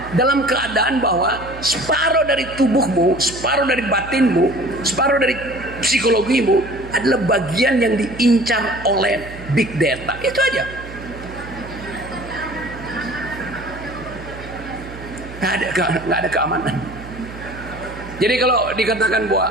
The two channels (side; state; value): right; noise; hum, 14 dB below the sound